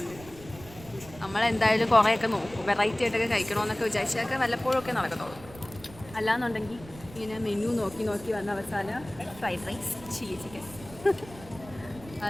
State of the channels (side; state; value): right; noise; rumble, 18 dB below the sound